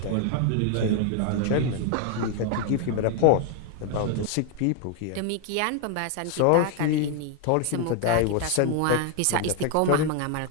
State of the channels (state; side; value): different; both; correlation 0.00